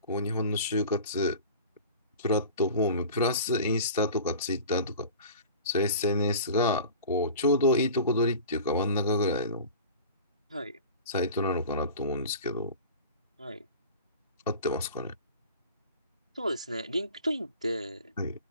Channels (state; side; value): inverted; both; correlation -0.39